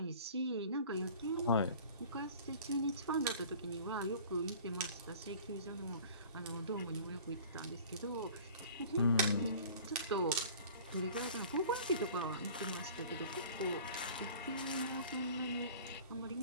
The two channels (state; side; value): inverted; both; correlation -0.45